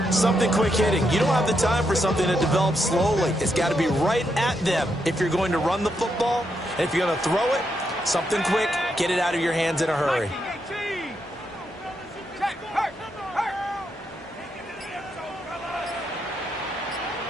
Something quick hitting. You don't have the time for something that develops slowly. It's got to be right at them if you're going to run the football. And if you're going to throw it, something quick, get it out of your hands in a hurry.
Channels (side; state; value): both; normal; correlation 0.81